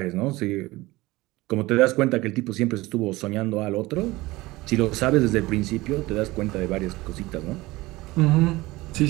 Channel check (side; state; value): left; quieter; 20.0 dB